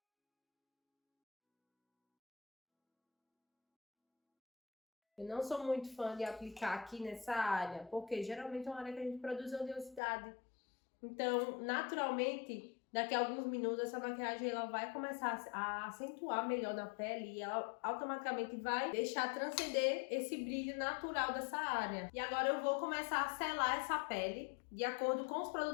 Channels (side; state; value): right; drops out; at 10.0 s